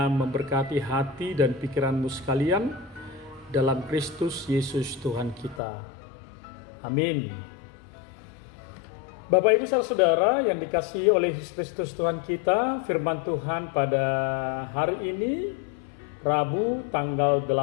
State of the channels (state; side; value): drops out; right; at 5.6 s